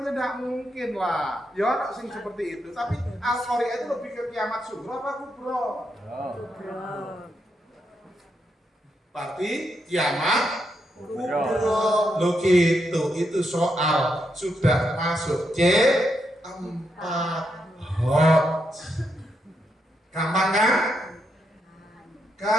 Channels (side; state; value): both; normal; correlation 0.81